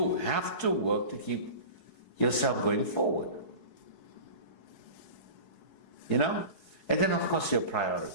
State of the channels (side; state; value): right; late; 4.7 ms